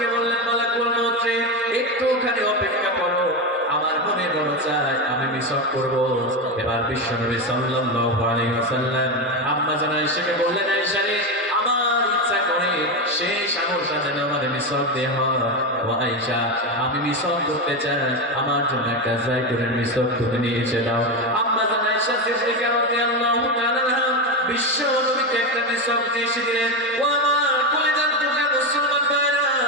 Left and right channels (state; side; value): normal; both; correlation 0.14